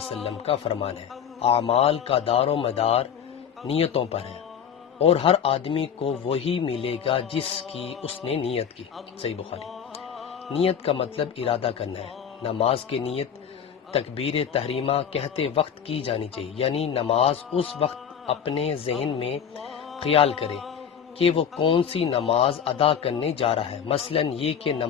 کا فرمان ہے، اعمال کا دار و مدار نیتوں پر ہے، اور ہر آدمی کو وہی ملے گا جس کی اس نے نیت کی۔ صحیح بخاری۔ نیت کا مطلب ارادہ کرنا ہے۔ نماز کی نیت تکبیر تحریمہ کہتے وقت کی جانی چاہیے، یعنی نماز اس وقت اپنے ذہن میں خیال کرے کہ وہ کون سی نماز ادا کرنے جا رہا ہے، مثلا یہ کہ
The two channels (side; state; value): right; quieter; 8.0 dB